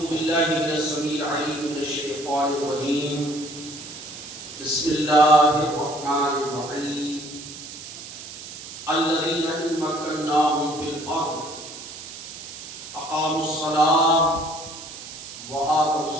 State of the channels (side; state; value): right; noise; hiss, 12 dB below the sound